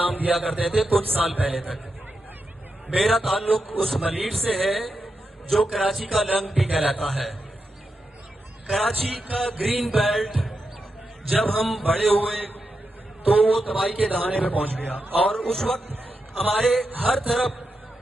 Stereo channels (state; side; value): normal; both; correlation 0.87